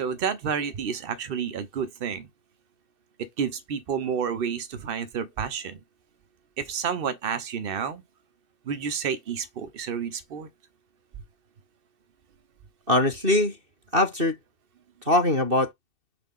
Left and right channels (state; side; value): late; left; 2.6 ms